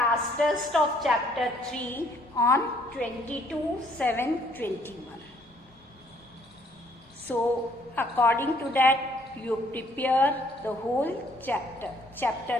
test of chapter 3 on 22/7/21. So according to that, you prepare the whole chapter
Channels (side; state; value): both; normal; correlation 0.64